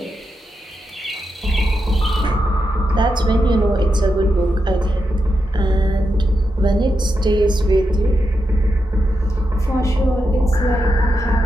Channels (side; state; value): both; normal; correlation 0.86